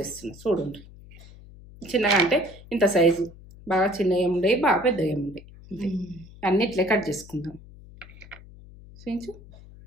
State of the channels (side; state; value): left; noise; hum, 20 dB below the sound